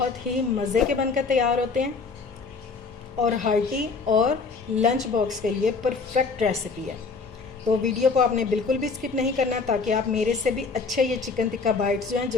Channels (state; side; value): quieter; right; 4.6 dB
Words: ही मज़े के बनकर तैयार होते हैं और हार्टी और लंच बॉक्स के लिए परफेक्ट रेसिपी है। तो वीडियो को आपने बिल्कुल भी स्किप नहीं करना, ताकि आप मेरे से भी अच्छे ये चिकन टिक्का बाइट्स जो हैं